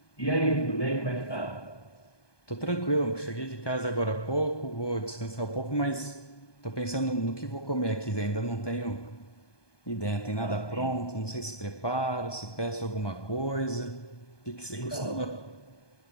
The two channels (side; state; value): right; late; 1.2 ms